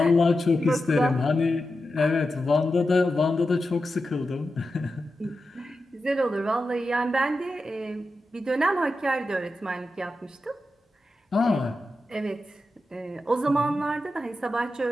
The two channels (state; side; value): normal; both; correlation 0.90